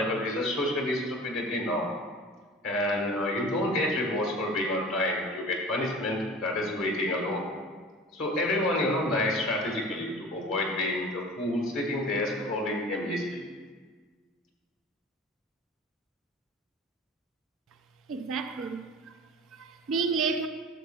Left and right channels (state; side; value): normal; both; correlation 0.40